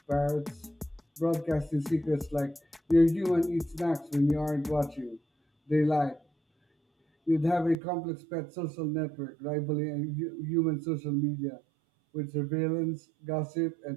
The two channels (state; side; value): drops out; left; at 7.8 s